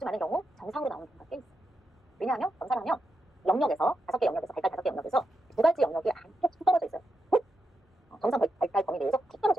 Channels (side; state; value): both; normal; correlation 0.85